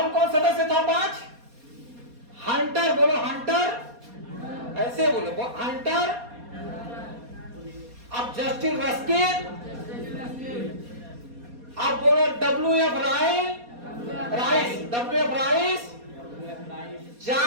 कौन सदस्य था 5, हंटर, बोलो हंटर, ऐसे बोलो हंटर। अब जस्टिस रस्किन, अब बोलो WF राइस,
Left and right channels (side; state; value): left; late; 4.2 ms